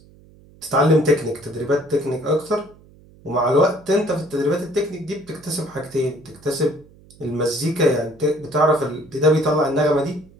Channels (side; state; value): right; noise; hum, 26 dB below the sound